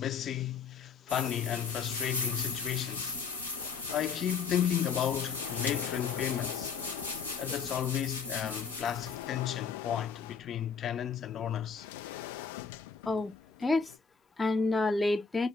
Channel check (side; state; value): right; quieter; 5.9 dB